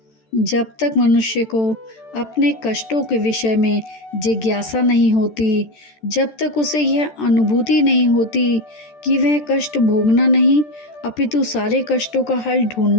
जब तक मनुष्य को अपने कष्टों के विषय में जिज्ञासा नहीं होती, जब तक उसे यह अनुभूति नहीं होती कि वह कष्ट भोगना नहीं अपितु सारे कष्टों का हल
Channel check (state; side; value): late; right; 13 ms